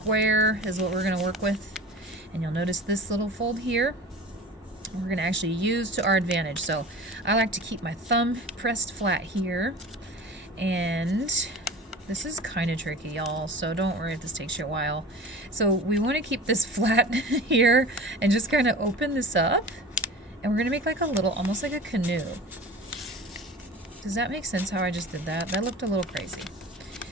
is what we're going to work with. And you'll notice this little fold here, we're going to actually use to our advantage. So I like to keep my thumb pressed flat here. And this is kind of tricky, y'all, so don't worry if this takes you a while. So we want to keep this flat here and just kind of open this up. And we're going to make like a little, almost like a canoe. Does that make sense how I just did that? That looked a little crazy.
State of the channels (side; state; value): both; normal; correlation 0.37